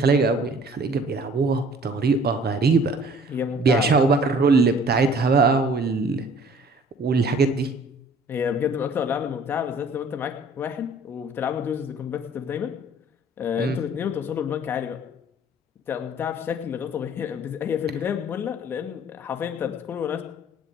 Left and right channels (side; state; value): both; normal; correlation 0.52